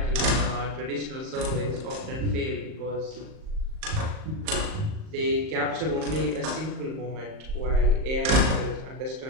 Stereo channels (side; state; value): left; late; 38 ms